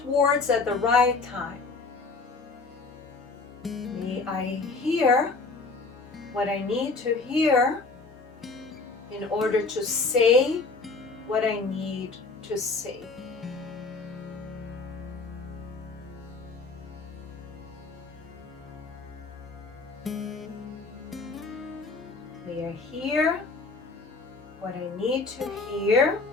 words at the right time. May I hear what I need to hear in order to say what I need to say. May I hear what I need to hear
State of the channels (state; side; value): quieter; right; 3.9 dB